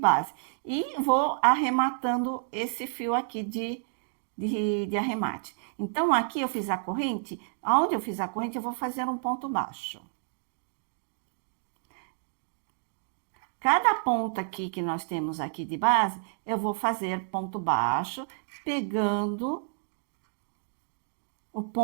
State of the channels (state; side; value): silent; left; digital silence